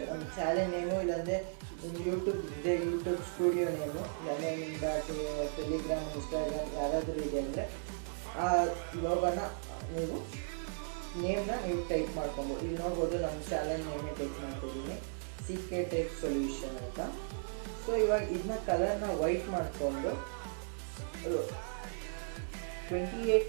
ಒಂದು ಚಾನೆಲ್ ನೇಮು, ಇಲ್ಲಾಂದರೆ ಯೂಟ್ಯೂಬ್ ಇದೆ ಯೂಟ್ಯೂಬ್ ಸ್ಟುಡಿಯೋ ನೇಮು, ಇಲ್ಲಾಂದರೆ ನಿಮ್ದು ಟೆಲಿಗ್ರಾಮ್ ಇನ್ಸ್ಟಾಗ್ರಾಮ್ ಯಾರಾದರೂ ಇದೆ ಅಂದರೆ ಆ ಲೋಗೋನ ನೀವು ನೇಮ್ನ ನೀವು ಟೈಪ್ ಮಾಡ್ಕೊಬೋದು. ಇಲ್ಲಿ ನೋಡ್ಬೋದು ನಮ್ಮ ಚಾನೆಲ್ ನೇಮೇ ಟೈಪ್ ಮಾಡ್ತಿದ್ದೀನಿ, ಸೀಕ್ರೆಟ್ ಟೆಕ್ಸ್ಟ್ ಸೊಲ್ಯೂಷನ್ ಅಂತ. ಸೊ ಇವಾಗ ಇದನ್ನ ಕಲರ್ನ ವೈಟ್ ಮಾಡಿಕೊಂಡು 28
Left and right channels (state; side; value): silent; left; digital silence